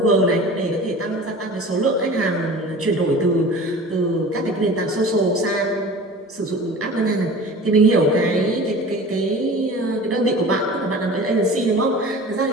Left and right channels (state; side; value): normal; both; correlation 0.39